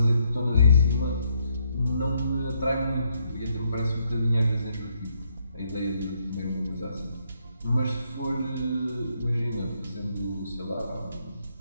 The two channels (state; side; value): inverted; both; correlation -0.74